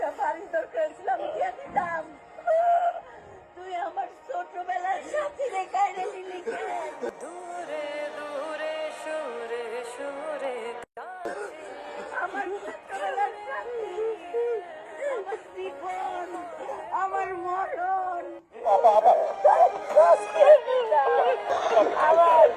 বাড়ি দরকার ছিল, আমি দিয়ে দিতাম। তুই আমার ছোটবেলার সাথী রেখায় নিলি কেন? দূরে দূরে সুরে সুরে আমার ছোটবেলার সাথী, আমার জীবন, আমার মরণ। আমার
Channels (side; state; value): both; identical; correlation 1.00